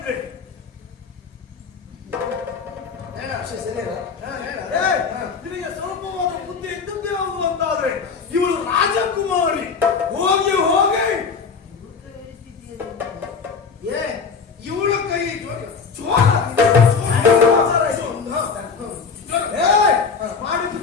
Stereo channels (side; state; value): right; quieter; 5.4 dB